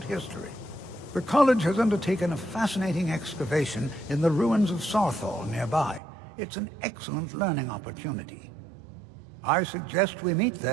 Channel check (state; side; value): drops out; left; at 6.0 s